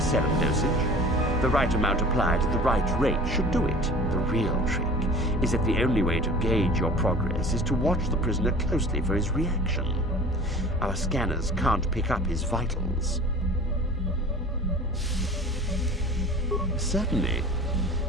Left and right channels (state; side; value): normal; both; correlation 0.41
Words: dosage. The right amount applied at the right rate should do it. The real trick is that the only way to gauge your progress is to watch the prisoner closely for his reaction. Our scanners can't pick up his vitals. Certainly.